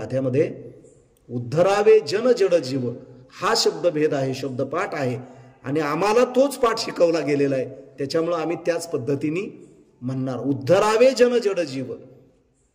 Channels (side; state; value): both; identical; correlation 1.00